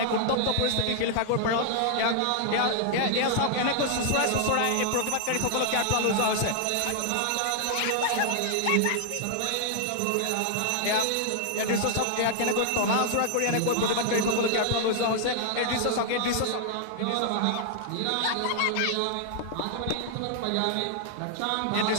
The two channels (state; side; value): different; both; correlation -0.01